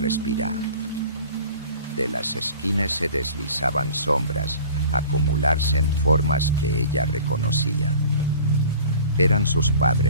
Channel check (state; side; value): inverted; both; correlation -0.44